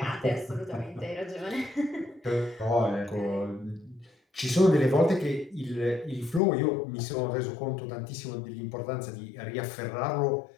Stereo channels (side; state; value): right; drops out; at 6.4 s